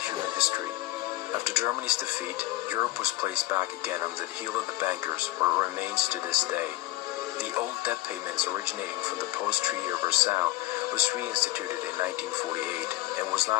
human history. After Germany's defeat, Europe was placed back again under the heel of the bankers, where it remains to this day. The old debt payments originating from the post-Treaty of Versailles was reinstituted in 1948 and was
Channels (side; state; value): right; quieter; 18.4 dB